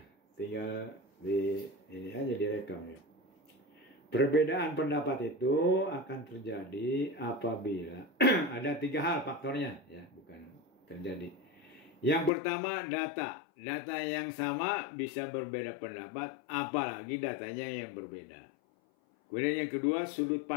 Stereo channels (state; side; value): drops out; right; at 12.3 s